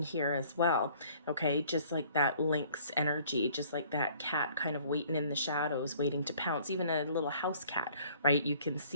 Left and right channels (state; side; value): inverted; both; correlation -0.56